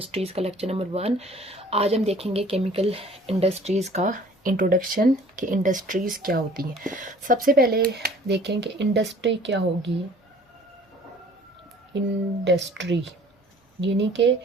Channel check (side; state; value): both; normal; correlation 0.52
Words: का लेक्चर नंबर 1। आज हम देखेंगे केमिकल इंडस्ट्रीज़ का इंट्रोडक्शन कि इंडस्ट्रीज़ क्या होती हैं। सबसे पहले देखें कि इंडस्ट्री क्या होगी। इंडस्ट्री यानी कि